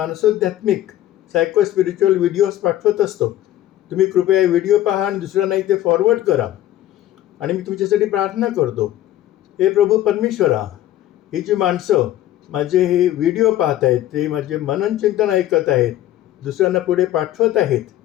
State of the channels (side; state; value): right; quieter; 13.3 dB